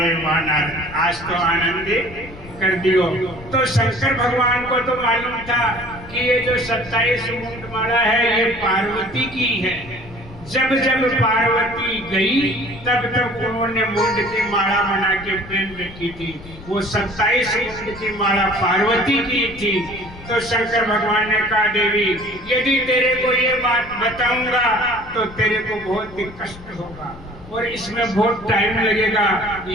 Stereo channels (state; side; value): noise; left; rumble, 18 dB below the sound